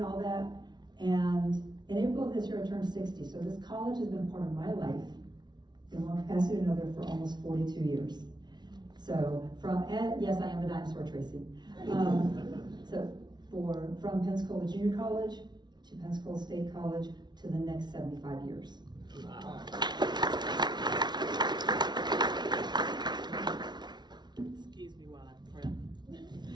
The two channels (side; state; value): left; late; 0.20 ms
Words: all that. And in April of this year, I turned 60. So this college has been part of my life in one capacity or another for almost 42 years. So yes, I am a dinosaur, Tracy. From Pensacola Junior College to Pensacola State College to the next 75 years. Wow. Excuse me while I prep.